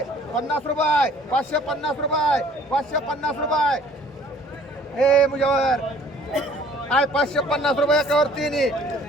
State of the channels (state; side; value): normal; both; correlation 0.55